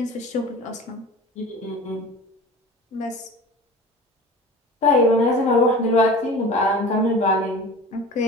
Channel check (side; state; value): both; normal; correlation 0.37